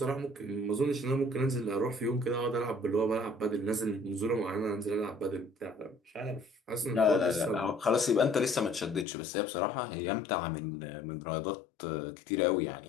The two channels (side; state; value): right; drops out; at 9.1 s